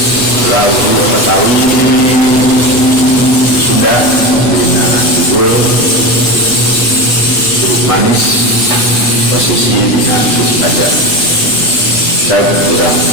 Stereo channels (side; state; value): right; late; 8.2 ms